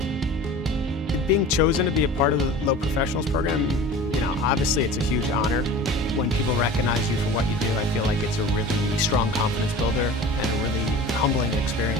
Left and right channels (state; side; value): normal; both; correlation 0.38